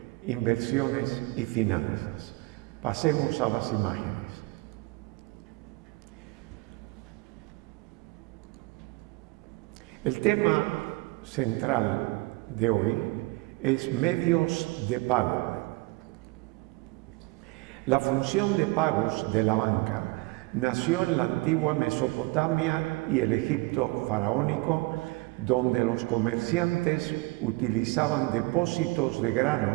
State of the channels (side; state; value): left; quieter; 23.9 dB